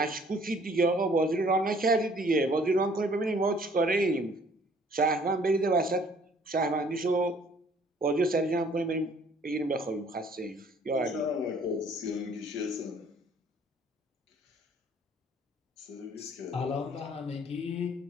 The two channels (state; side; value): normal; both; correlation 0.58